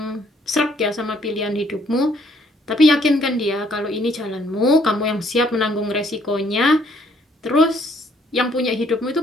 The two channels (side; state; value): both; normal; correlation 0.65